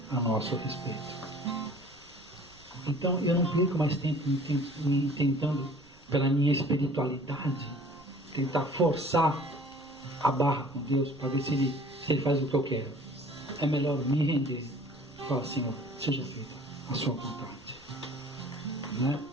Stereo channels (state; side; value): noise; right; rumble, 26 dB below the sound